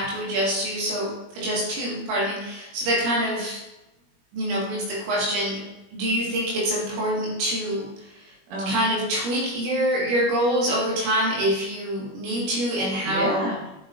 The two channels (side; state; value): left; late; 21 ms